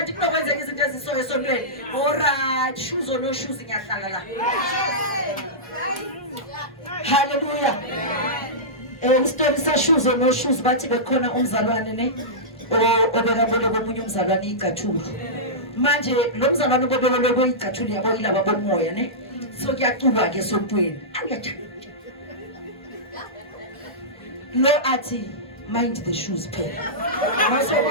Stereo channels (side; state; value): both; normal; correlation -0.15